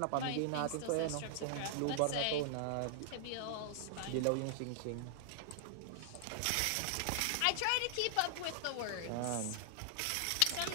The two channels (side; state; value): both; different; correlation -0.01